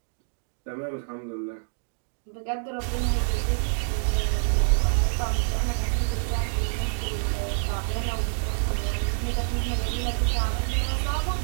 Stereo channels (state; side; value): silent; left; digital silence